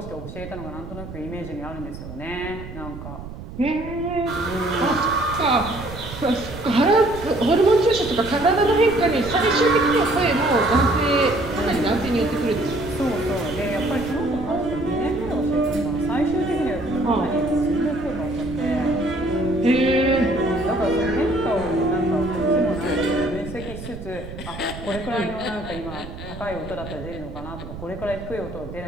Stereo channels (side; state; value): right; noise; rumble, 12 dB below the sound